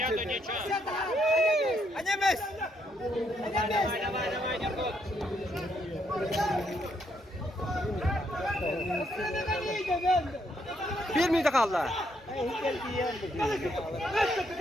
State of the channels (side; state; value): both; normal; correlation 0.74